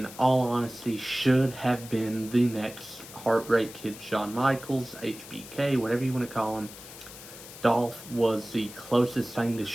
all honesty, should have been the next Heartbreak Kid Shawn Michaels, HBK, whatever you want to call him. Dolph was the closest thing to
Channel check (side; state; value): left; noise; hiss, 15 dB below the sound